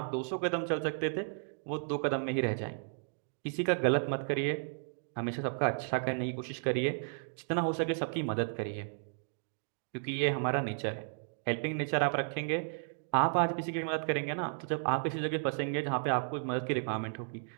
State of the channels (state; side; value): silent; left; digital silence